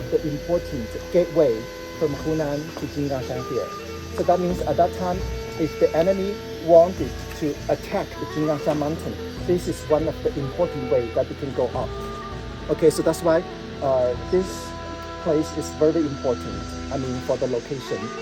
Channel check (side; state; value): both; identical; correlation 1.00